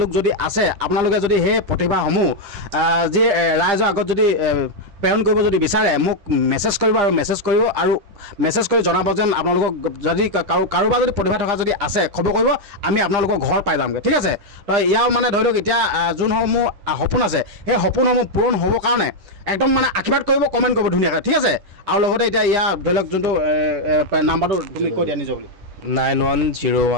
লোক যদি আছে আপোনালোকে যদি সেই প্ৰতিভাসমূহ যি ৰাইজৰ আগত যদি প্ৰেৰণ কৰিব যদি বিচাৰে মোক মেছেজ কৰিব আৰু মেছেজ কৰি জনাব যেন আপোনালোকক যদি কাৰোবাৰ যদি প্ৰতিভা থকা যদি আছে খবৰ কৰিব আমি আপোনালোকৰ ঘৰ পাই যামগৈ ঠিক আছে তো ইয়াৰ মানে ধৰি লওক এতিয়া যোনসমূহ সপোন আছে সেই সপোনসমূহ পূৰণ হ'বৰ কাৰণে একদম মানে আশীৰ্বাদ কৰিব কমেণ্ট কৰিব ধুনীয়াকৈ ঠিক আছে আৰু লগতে এতিয়া ইয়াৰ ধৰি লওক যোনটো নাম্বাৰটো তুমি কৈ দিয়া নিজৰ বুলি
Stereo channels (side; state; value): left; late; 10 ms